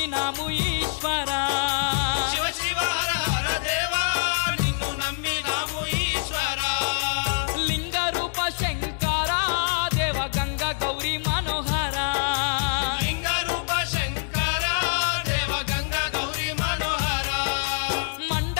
ఈశ్వరా శివ శివ హర హర దేవా నిన్ను నమ్మినాము ఈశ్వరా లింగ రూప శంకర దేవ గంగ గౌరీ మనోహర లింగ రూప శంకర దేవ గంగ గౌరీ మనోహర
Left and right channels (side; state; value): right; silent; digital silence